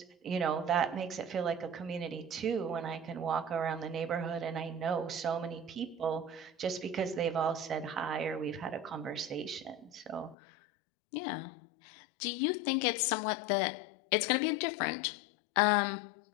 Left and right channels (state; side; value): drops out; right; at 10.4 s